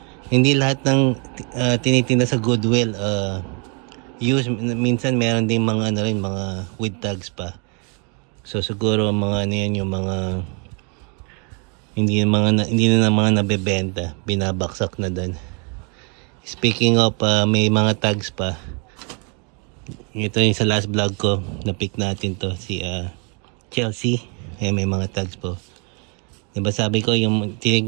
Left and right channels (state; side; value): quieter; left; 35.8 dB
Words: Hindi lahat ng tinitinda sa Goodwill use. Minsan meron din mga ano rin, mga with tags pa. So siguro mga ano yan, yung mga hindi na mga nabebenta, binabaksak na doon. Speaking of may mga tags pa. Ito yung sa last vlog ko, na-pick natin to si Chelsea. May mga tags po. Diba sabi ko, yung